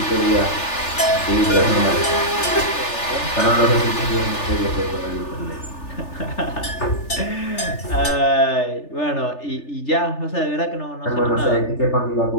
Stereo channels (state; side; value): late; right; 3.4 ms